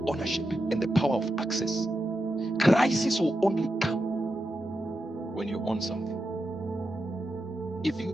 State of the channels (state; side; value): normal; both; correlation 0.88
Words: ownership and the power of access. Crisis will only come when you own something. If you